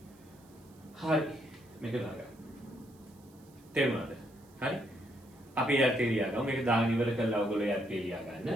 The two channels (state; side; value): noise; right; hiss, 29 dB below the sound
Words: හරි. මේක දාගන්න. තේරුණාද? හරි. අපි යත් එළියා ගමු. මේක දාගෙන ඉවර කරලා ඔයගොල්ලෝ යත් එළියා